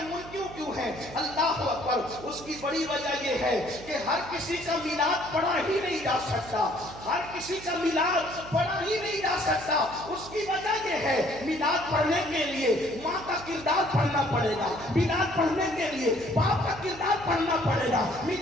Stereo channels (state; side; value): noise; right; hum, 16 dB below the sound